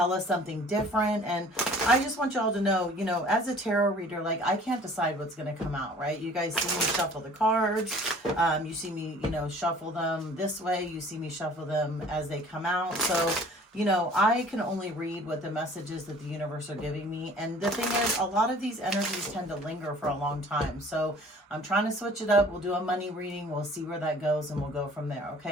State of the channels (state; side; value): normal; both; correlation 0.50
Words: us something different. And I just want y'all to know, you know, as a tarot reader, like I can't decide what's going to come out, right? You guys see me shuffle the cards. You see me, you know, shuffle them this way. You see me shuffle them as they come out. So, you know, I can only read what the messages that the universe are giving me. And the thing is, a lot of these energies tend to linger for a long time. So I'm trying to switch it up. We'll do a money reading. We'll see where that goes and we'll go from there.